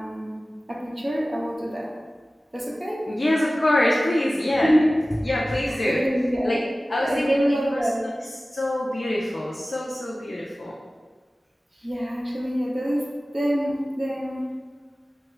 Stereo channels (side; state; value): both; normal; correlation 0.97